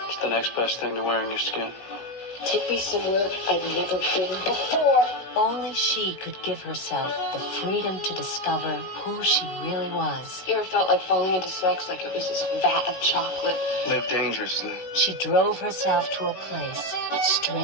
It's the next best thing to wearing your skin. Take me somewhere I've never been before. Only she could give herself the freedom to discover who she really was. You ever felt like falling into sex like it was this vat of chocolate? Live dangerously. She drove herself to a place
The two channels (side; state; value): right; late; 16 ms